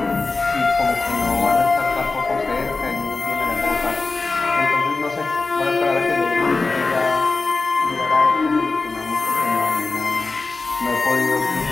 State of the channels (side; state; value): right; quieter; 3.7 dB